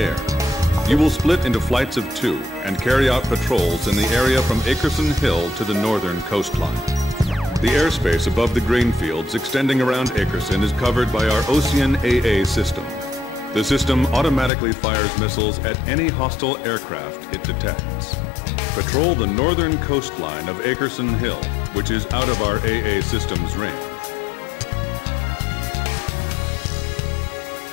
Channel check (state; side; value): drops out; right; at 14.5 s